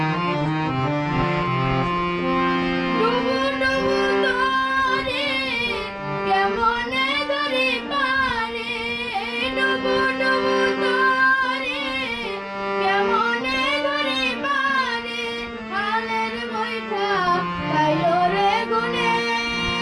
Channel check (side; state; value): both; identical; correlation 1.00